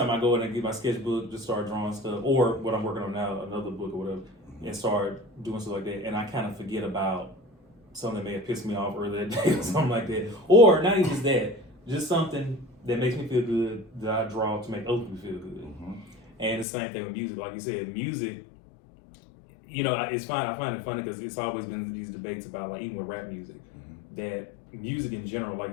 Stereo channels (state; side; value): drops out; right; at 16.7 s